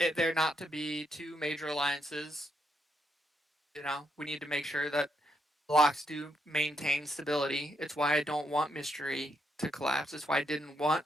not to be two major alliances, we need to make sure that blocks do maintain stability. It's why I don't want Mystery to collapse. It's why I didn't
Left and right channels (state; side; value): normal; both; correlation 0.78